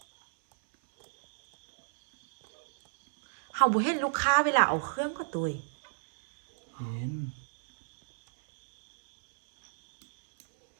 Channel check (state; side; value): silent; left; 59 dB below the other